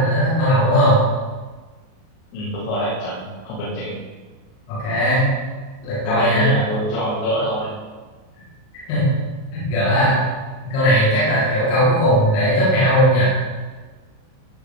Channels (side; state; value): right; late; 38 ms